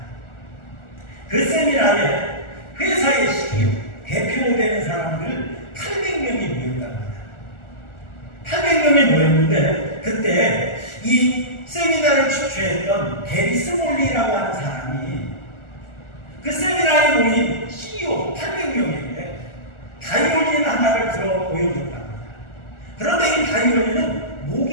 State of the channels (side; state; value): right; late; 1.4 ms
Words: 그 세미나에 회사의 CEO, 대표되는 사람들 800명이 모였다고 합니다. 800명이 모였는데 그때 이 세미나를 주최했던 게리 스몰리라고 하는 사람이 그 세미나에 모인 CEO 800명에게 바이올린 하나를 들어 보여줬답니다. 그런데 이 바이올린은